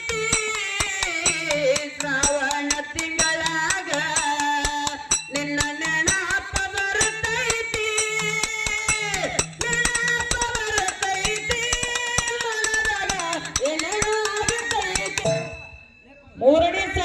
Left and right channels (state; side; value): identical; both; correlation 1.00